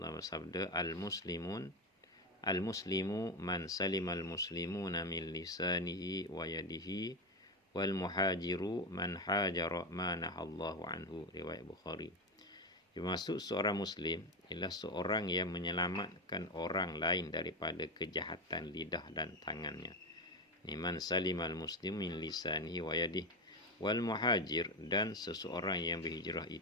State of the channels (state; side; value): normal; both; correlation 0.15